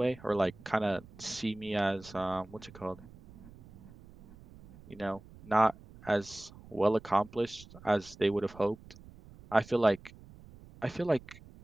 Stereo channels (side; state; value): right; noise; rumble, 20 dB below the sound